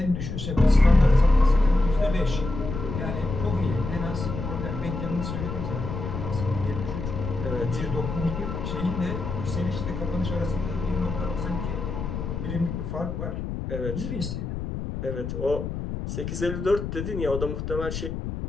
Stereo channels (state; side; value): noise; left; rumble, 5 dB below the sound